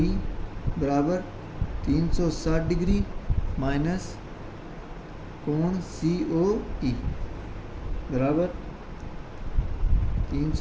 बराबर 360 डिग्री माइनस कोण COE बराबर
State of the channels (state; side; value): identical; both; correlation 1.00